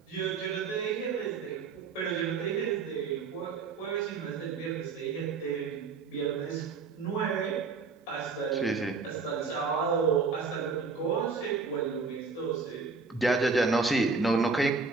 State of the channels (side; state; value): left; quieter; 4.7 dB